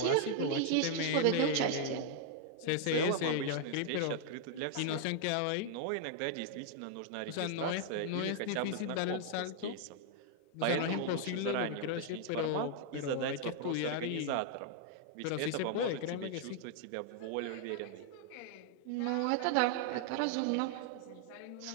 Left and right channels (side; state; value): both; different; correlation 0.00